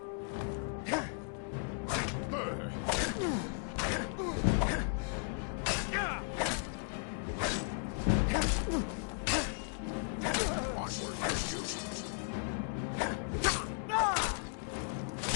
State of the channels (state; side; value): silent; right; 54 dB below the other